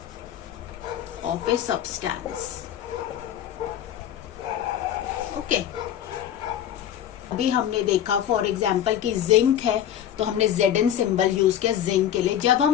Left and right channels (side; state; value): right; quieter; 10.6 dB